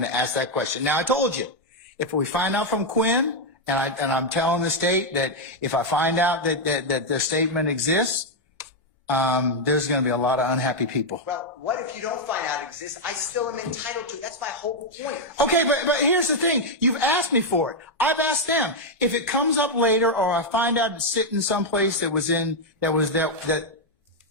to ask that question. Now, I told you, if we find out from Quinn, and I'm telling the state that if I find out that the statement exists, there's going to be a lot of unhappy people. Well, what if you don't find out it exists? I still am entitled to it. That's my whole point. Okay, but here's the thing. You've asked me for it. I've asked them. If it comes up later, or I find out it's sitting someplace that was in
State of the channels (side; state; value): both; normal; correlation 0.00